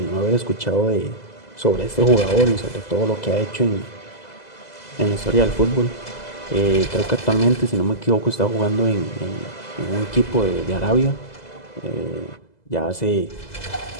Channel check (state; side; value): late; right; 2.0 ms